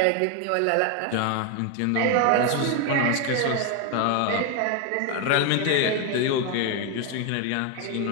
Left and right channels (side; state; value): both; different; correlation 0.01